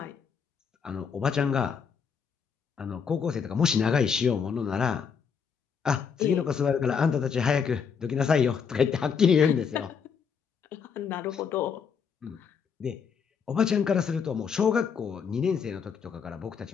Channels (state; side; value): quieter; right; 6.5 dB